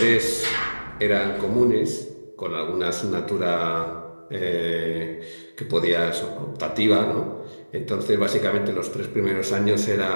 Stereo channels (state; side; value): inverted; both; correlation -1.00